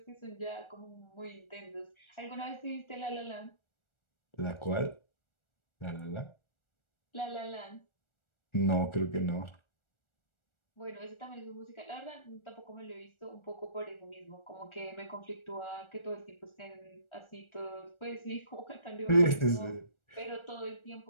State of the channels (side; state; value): right; late; 1.4 ms